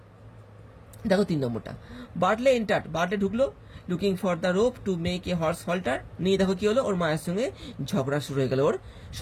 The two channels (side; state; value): both; identical; correlation 1.00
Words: দেখো 3 নম্বরটা, বার্টলে এন্টার্ড, বার্টলে ঢুকলো looking for the rope to make a horse Holter. নিয়ে দেখো কি হলো, ওর মায়ের সঙ্গে ঝগড়া শুরু হয়ে গেল ওর